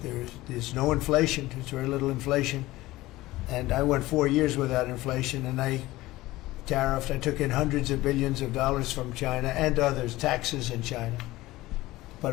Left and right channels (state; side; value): quieter; right; 18.0 dB